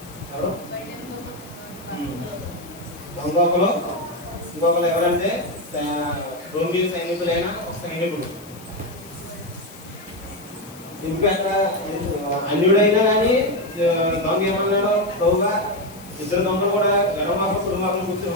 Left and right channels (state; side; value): noise; left; hiss, 20 dB below the sound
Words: ఎవరు ఇంకొకరు ఎవరంటే రోమిలి సైనికులైన ఒక సైనికుడు. ఎందుకంటే అన్యుడైనా కానీ దొంగ ఏమన్నాడో ప్రభుగా 2 దొంగలు కూడా గర్వమాప కుటుంబాలను కూర్చొని